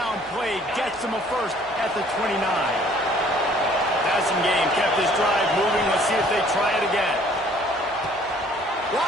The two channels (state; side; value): normal; both; correlation 0.57